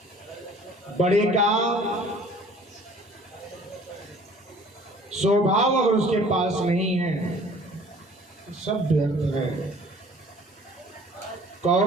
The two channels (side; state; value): both; normal; correlation 0.52